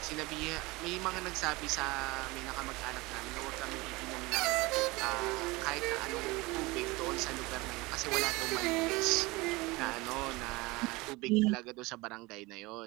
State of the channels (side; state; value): left; quieter; 22.7 dB